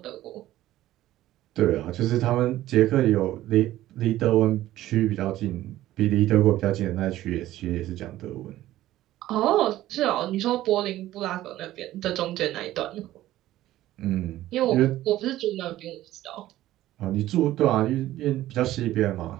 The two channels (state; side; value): quieter; left; 14.7 dB